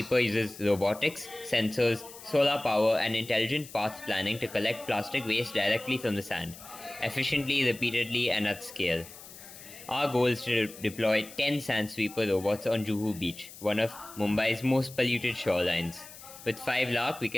uses robotics, sensors, solar power, and intelligent path planning to collect plastic waste directly from the sand, efficiently, repeatedly, and at scale. Our goal is to deploy 10 Sand Sweeper robots on Juhu beach, one of Mumbai's most polluted shorelines. With 5 lakh, we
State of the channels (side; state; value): left; noise; hiss, 17 dB below the sound